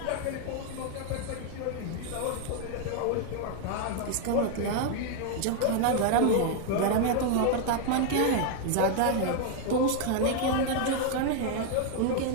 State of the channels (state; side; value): different; both; correlation 0.00